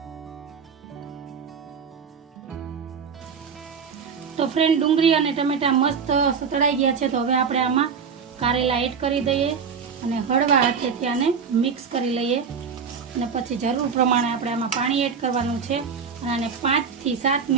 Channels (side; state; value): left; quieter; 6.2 dB